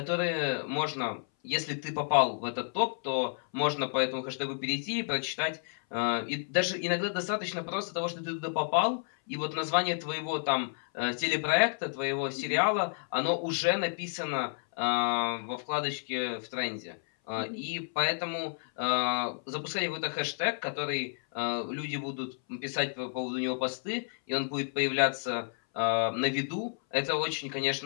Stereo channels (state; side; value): silent; right; 57 dB below the other